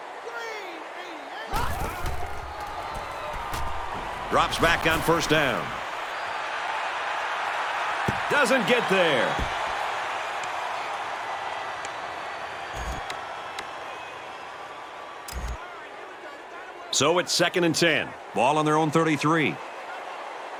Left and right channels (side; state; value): both; identical; correlation 1.00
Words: Drops back on 1st down. Doesn't get there. So it's 2nd and 10. Ball on their own 33.